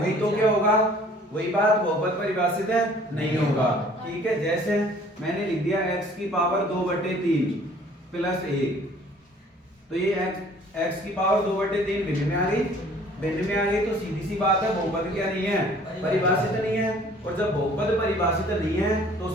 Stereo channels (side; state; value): both; normal; correlation 0.54